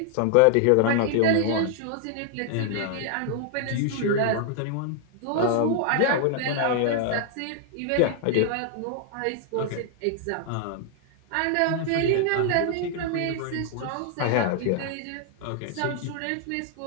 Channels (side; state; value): both; different; correlation 0.00